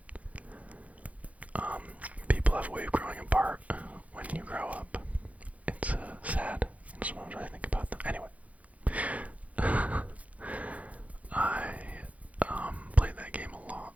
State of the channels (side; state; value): left; late; 0.068 ms